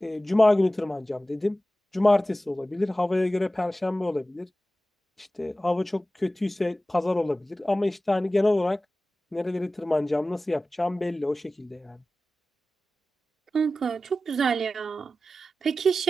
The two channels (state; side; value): normal; both; correlation 0.95